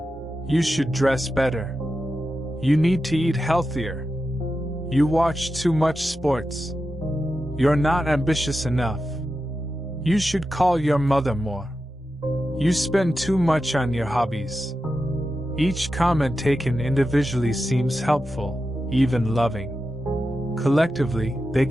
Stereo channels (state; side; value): normal; both; correlation 0.90